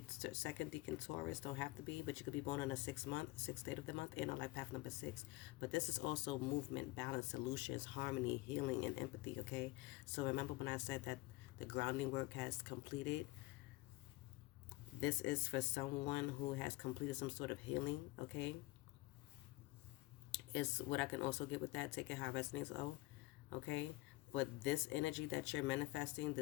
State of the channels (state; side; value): quieter; right; 20.0 dB